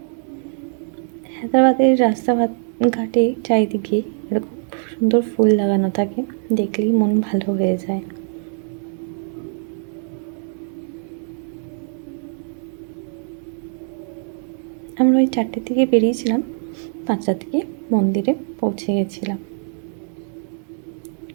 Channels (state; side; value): silent; left; 56 dB below the other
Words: হায়দ্রাবাদের রাস্তাঘাটে চারিদিকে এরকম সুন্দর ফুল লাগানো থাকে, দেখলেই মন ভালো হয়ে যায়। আমরা ওই 4টের দিকে বেরিয়েছিলাম, 5টার দিকে মন্দিরে পৌঁছে গেছিলাম।